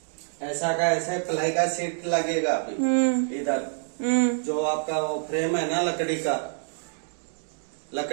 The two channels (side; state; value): left; silent; digital silence